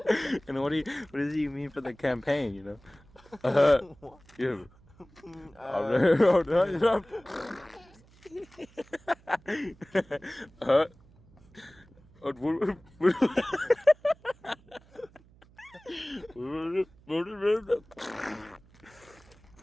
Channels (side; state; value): right; noise; hum, 27 dB below the sound